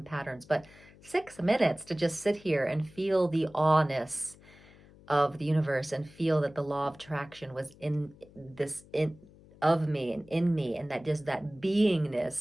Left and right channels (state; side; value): noise; left; hum, 24 dB below the sound